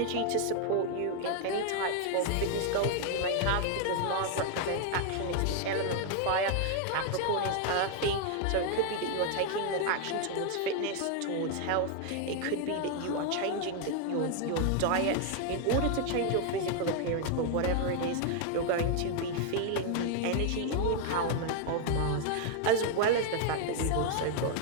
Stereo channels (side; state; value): both; different; correlation 0.00